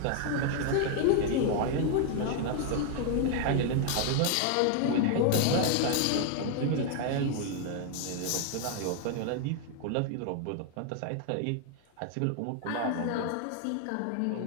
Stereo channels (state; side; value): different; both; correlation 0.00